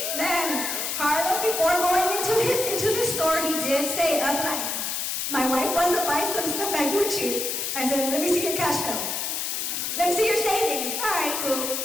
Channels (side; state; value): left; noise; hiss, 2 dB below the sound